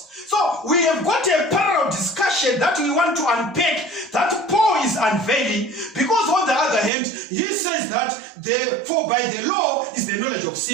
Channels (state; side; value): drops out; left; at 6.9 s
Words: So we have got a parallel discussion that we want to unpack, that Paul is unveiling, because on the other hand, he says that for by the law is the knowledge of